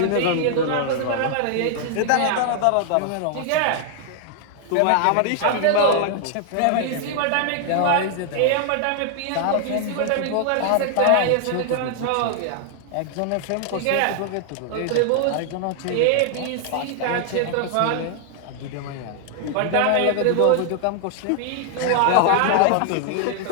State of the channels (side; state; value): both; different; correlation 0.00